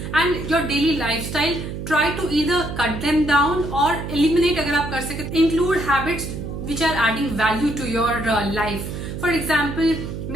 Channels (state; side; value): noise; right; hum, 7 dB below the sound